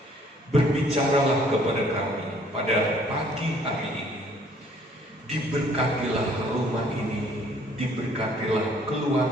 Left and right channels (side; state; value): both; normal; correlation 0.60